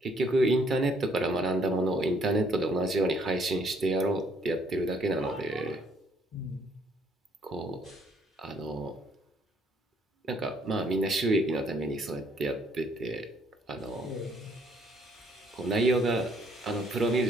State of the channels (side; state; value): both; normal; correlation 0.65